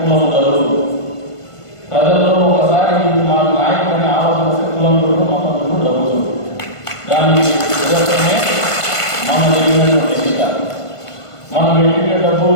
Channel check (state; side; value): late; right; 1.5 ms